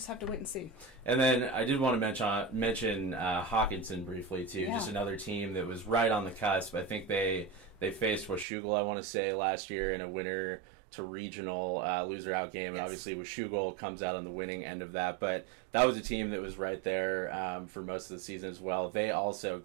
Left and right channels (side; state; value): left; drops out; at 8.5 s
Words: have to wait and see. And then I did want to mention Hawkinson briefly, too. Just another team that was right on the cusp. I think they faced Washougal, I want to say, last year in a winner to regional loser out game. Yes. Obviously, Washougal comes out on the winning end of that, but that was a team that was right there for most of the season as well. They also